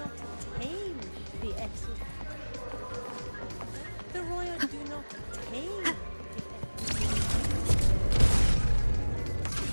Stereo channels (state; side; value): inverted; both; correlation -1.00